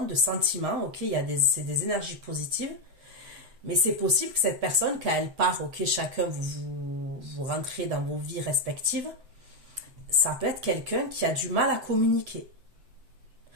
de sentiments, ok, c'est des énergies positives, mais c'est possible que cette personne, quand elle part, ok, chacun vous rentrez dans vos vies respectives, ça peut être quelqu'un qui a du mal à communiquer.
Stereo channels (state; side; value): late; left; 7.8 ms